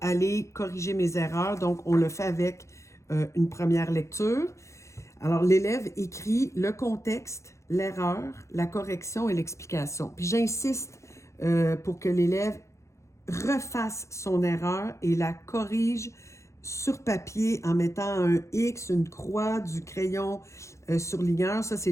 corriger mes erreurs. Donc, on le fait avec une première lecture. Alors, l'élève écrit le contexte, l'erreur, la correction et l'explication. Puis, j'insiste pour que l'élève refasse son erreur et la corrige sur papier en mettant un X, une croix, du crayon surligneur. Ça, c'est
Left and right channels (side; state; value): right; late; 0.14 ms